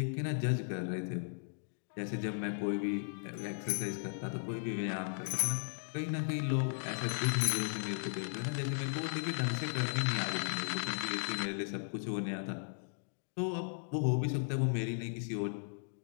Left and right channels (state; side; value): silent; right; digital silence